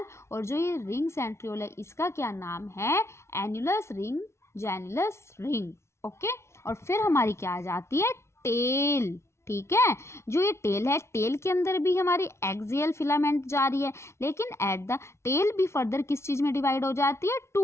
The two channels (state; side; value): late; right; 0.13 ms